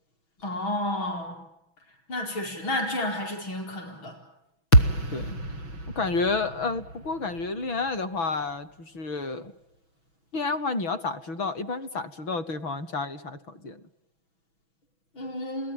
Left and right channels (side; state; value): right; late; 6.1 ms